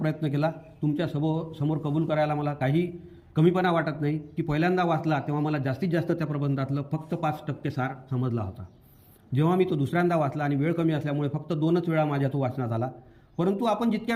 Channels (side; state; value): both; identical; correlation 1.00